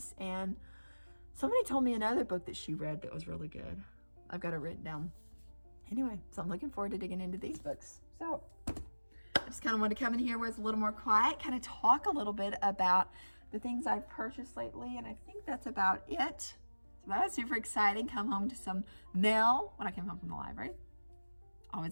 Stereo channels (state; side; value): inverted; both; correlation -1.00